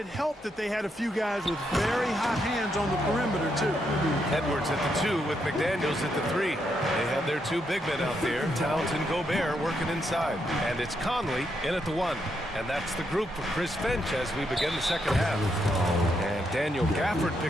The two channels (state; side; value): normal; both; correlation 0.79